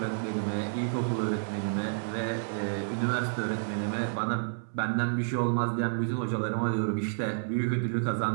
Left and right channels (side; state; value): left; silent; 58 dB below the other